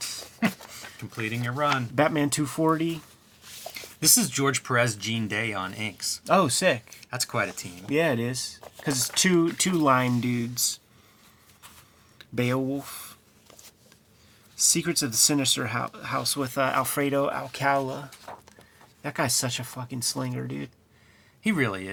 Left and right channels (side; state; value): both; identical; correlation 1.00